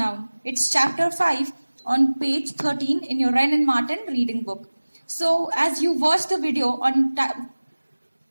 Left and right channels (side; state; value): both; inverted; correlation -1.00